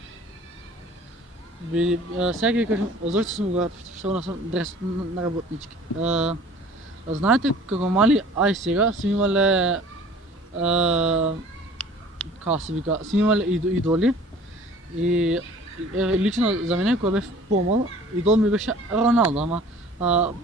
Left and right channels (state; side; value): normal; both; correlation 0.48